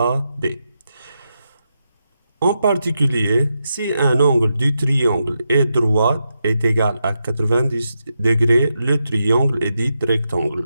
En particulier, si un angle du triangle est droit est égal à 90 degrés, le triangle est dit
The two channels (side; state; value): both; inverted; correlation -0.86